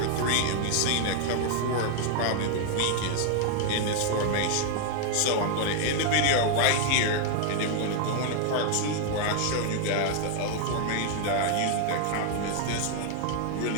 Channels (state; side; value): different; both; correlation 0.00